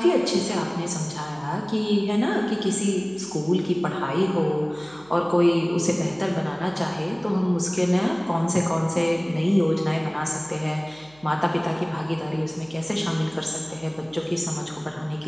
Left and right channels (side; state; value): right; noise; hum, 27 dB below the sound